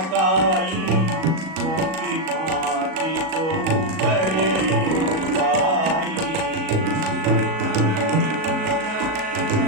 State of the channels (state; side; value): late; left; 37 ms